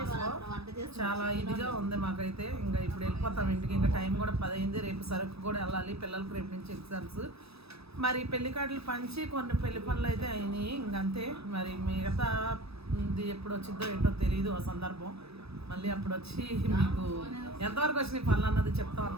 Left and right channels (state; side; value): late; left; 0.78 ms